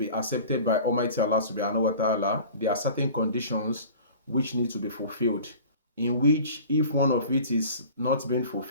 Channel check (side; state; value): both; inverted; correlation -0.42